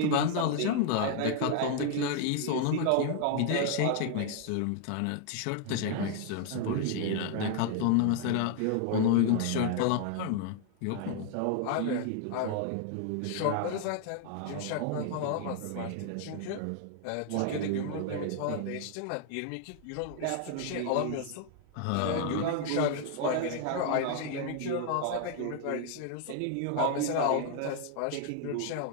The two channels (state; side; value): different; both; correlation 0.00